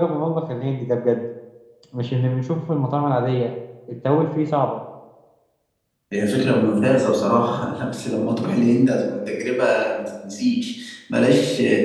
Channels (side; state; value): both; identical; correlation 1.00